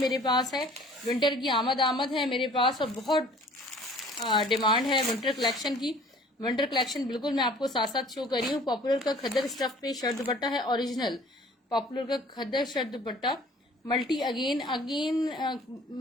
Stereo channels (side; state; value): both; normal; correlation 0.51